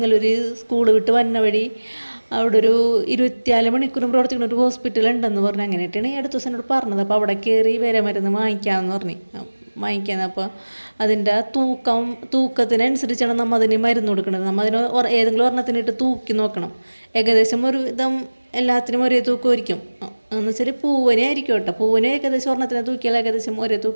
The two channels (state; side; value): inverted; both; correlation -1.00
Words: സ്കൂൾ വിട്ട് വന്ന വഴി അവിടെ ഒരു 24 മണിക്കൂറും പ്രവർത്തിക്കുന്ന ഒരു ഹോസ്പിറ്റൽ ഉണ്ടെന്ന് പറഞ്ഞു. അങ്ങനെയായിട്ടാണ് ഈ അടുത്ത ദിവസം എന്നോട് പറഞ്ഞത്. അപ്പോൾ അവിടെ കയറി വിരമരുന്ന് വാങ്ങിക്കാമെന്ന് പറഞ്ഞു. വാങ്ങിക്കാമെന്ന്. അപ്പോൾ അതിൻ്റെ തൂക്കത്തിനനുസരിച്ചാണ് നമ്മൾ അതിന് മരുന്ന് കൊടുക്കുന്നത്. നമ്മൾ അതിന് ഏതെങ്കിലും ഒരെണ്ണത്തിനിട്ട് തൂക്കി നോക്കണം. ഏകദേശം ഒരു വിധം എല്ലാത്തിനും ഒരേ തൂക്കമായിരിക്കും. എന്ന് വെച്ചാൽ പൂവനെ ആയിരിക്കും കേട്ടോ. പൂവനെ ഏകദേശം ഒരെണ്ണത്തിനെ തൂക്കിയാൽ ഏകദേശം ഒരേ